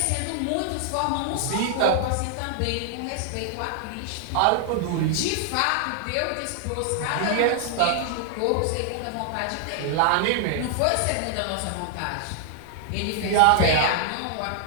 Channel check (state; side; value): different; both; correlation 0.00